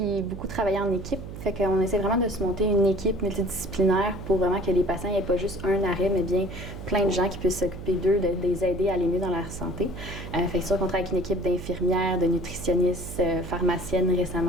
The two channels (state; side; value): noise; right; hum, 10 dB below the sound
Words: beaucoup travaille en équipe. Fait qu'on essaie vraiment de se monter une équipe multidisciplinaire pour vraiment que les patients n'aient pas juste un arrêt, mais bien plein de gens qui puissent s'occuper d'eux, de les aider à aller mieux dans leur santé. Fait que c'est sûr qu'on travaille avec une équipe d'infirmières, de nutritionnistes, pharmaciennes